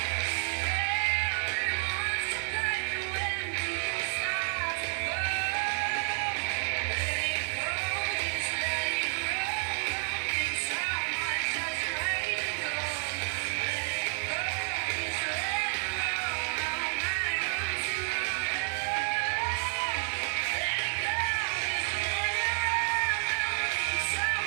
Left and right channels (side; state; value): left; silent; digital silence